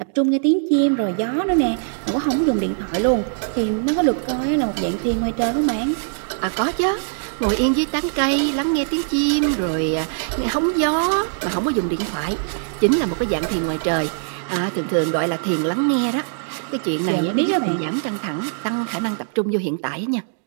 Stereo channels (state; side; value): silent; left; digital silence